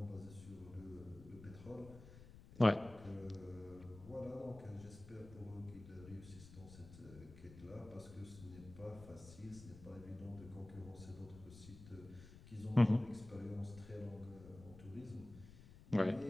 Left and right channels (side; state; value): left; noise; rumble, 17 dB below the sound